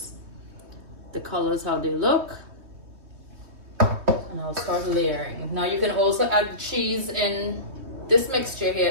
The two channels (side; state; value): left; late; 3.2 ms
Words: the colors, how they look. And I'll start layering. Now you can also add cheese in this mixture